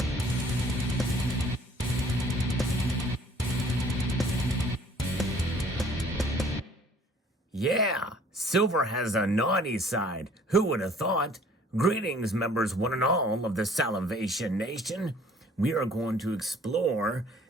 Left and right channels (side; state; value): both; normal; correlation 0.55